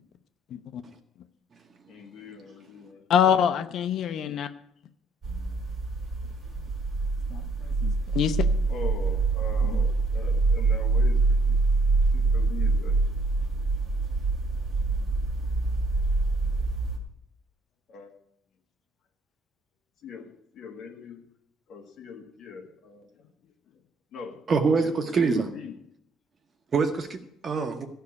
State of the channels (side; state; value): both; normal; correlation 0.63